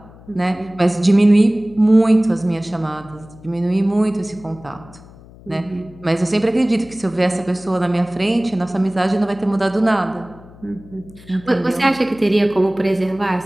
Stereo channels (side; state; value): left; noise; hum, 22 dB below the sound